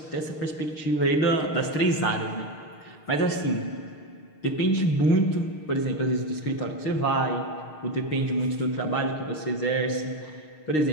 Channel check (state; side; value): late; right; 6.5 ms